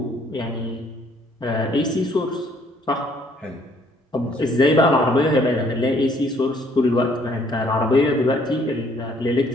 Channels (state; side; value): normal; both; correlation 0.63